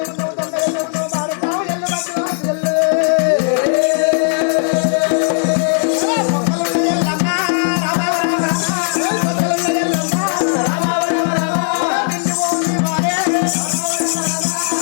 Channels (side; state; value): right; silent; digital silence